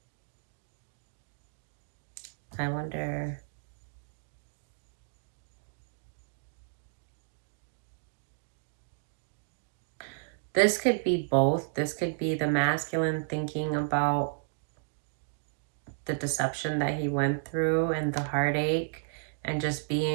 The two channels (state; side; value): silent; left; digital silence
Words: on. I wonder... This could be both. This could be the masculine thinking about the deception that he went through and the heartache, and just